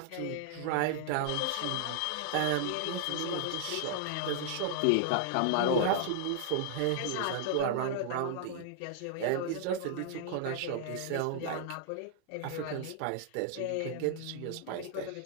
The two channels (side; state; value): both; different; correlation -0.01